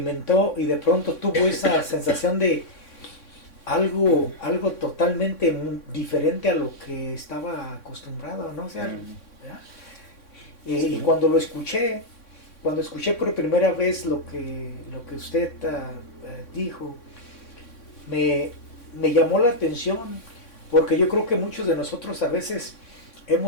y de pronto tuvo esa sensación de algo totalmente diferente a lo que estaba acostumbrado, ¿no? O sea, y cuando escuché por primera vez lo que usted dijo, me llamó la atención, porque yo creo que muchos de nosotros a veces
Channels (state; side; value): late; right; 3.6 ms